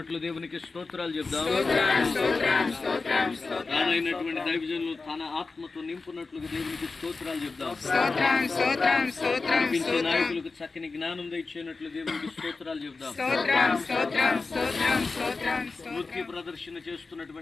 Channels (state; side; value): quieter; right; 4.0 dB